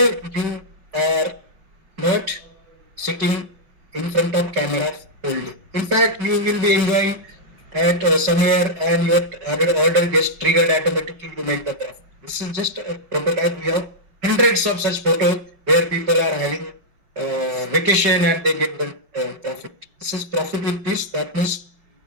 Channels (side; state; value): left; late; 5.3 ms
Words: you are not sitting in front of camera whole day. In fact, you will be enjoying at somewhere and your order gets triggered automatically to make the profit. This is just a prototype. We have hundreds of such photos where people are having vacation and they get the profit. This is profit with peace. That means